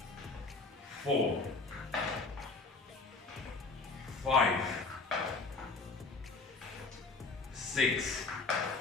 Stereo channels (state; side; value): quieter; right; 3.9 dB